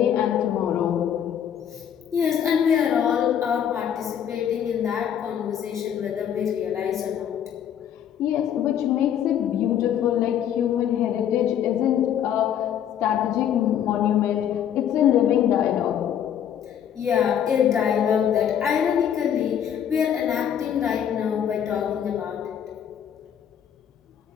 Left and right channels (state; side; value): quieter; right; 9.3 dB